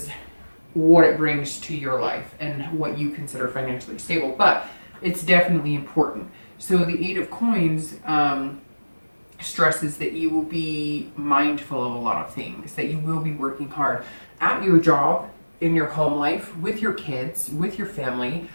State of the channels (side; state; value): both; inverted; correlation -1.00